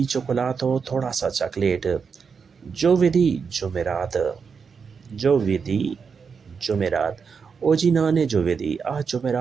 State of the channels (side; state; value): left; quieter; 5.8 dB